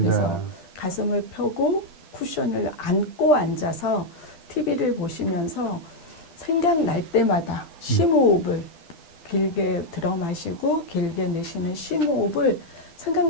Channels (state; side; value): late; right; 12 ms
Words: 네. 가슴을 펴고 쿠션을 안고 앉아서 TV를 보시면서 생각날 때마다 심호흡을 길게 들어 마시고 길게 내쉬는 심호흡을